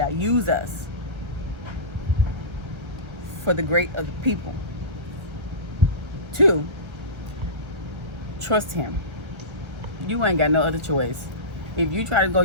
use us for the great of the people. 2, trust him. You ain't got no other choice. If you try to go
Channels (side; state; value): left; late; 1.3 ms